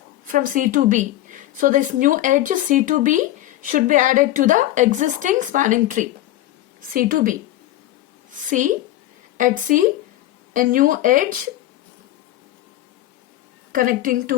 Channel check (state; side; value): quieter; right; 14.6 dB